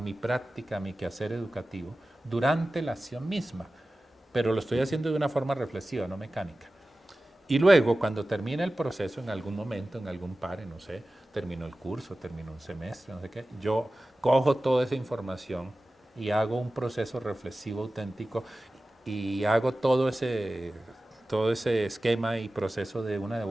mi práctica, a mi quehacer educativo, durante la acción misma. Pero lo estoy haciendo de una forma reflexiva, no mecánica. Y luego, cuando termina el proceso, en algún momento, en algún pare, no sé, terminó el curso, terminó un semestre, no sé qué, yo cojo toda esa información y hago un proceso reflexivo auténtico y hago todo ese esquema y proceso de una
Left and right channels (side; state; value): both; normal; correlation 0.96